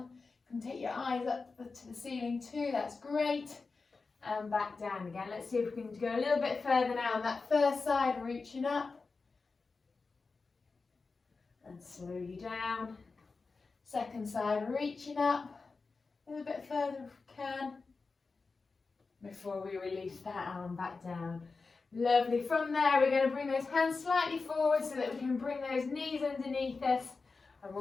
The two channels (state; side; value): quieter; right; 4.2 dB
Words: You can take your eyes up to the ceiling too, that's great. And back down again. Let's see if we can go a little bit further now on that first side, reaching up. And slowly down. Second side, reaching up. A little bit further if we can. Before we release that arm back down. Lovely. From there, we're going to bring those hands slightly forward so that we can bring those knees underneath us, and